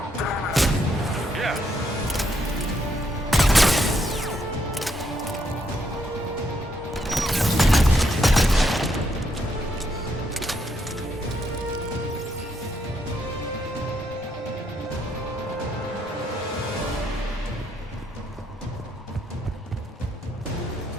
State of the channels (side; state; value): both; normal; correlation 0.76